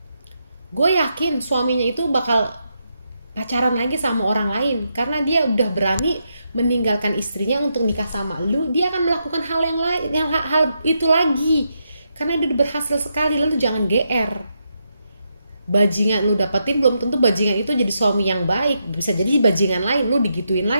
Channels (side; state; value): both; inverted; correlation -0.82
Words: gue yakin suaminya itu bakal pacaran lagi sama orang lain. Karena dia udah berani meninggalkan istrinya untuk nikah sama lu, dia akan melakukan hal yang lain, hal itu lagi. Karena dia udah berhasil sekali. Lalu jangan GR. Bajingan lu dapetin belum tentu bajingan itu jadi suami yang baik. Bisa jadi bajingan lain, lu digituin